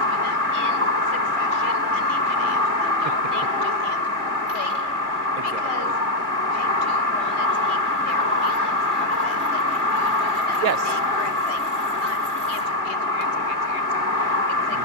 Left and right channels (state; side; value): late; left; 2.4 ms